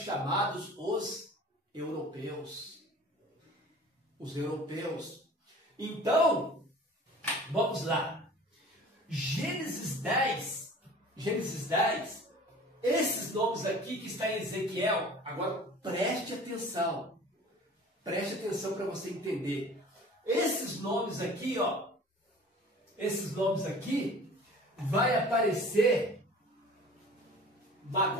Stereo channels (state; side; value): normal; both; correlation 0.44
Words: os europeus. os europeus. Então, vamos lá. Gênesis 10, esses nomes aqui que está em Ezequiel, agora preste atenção para você entender. Esses nomes aqui, ó, vai aparecer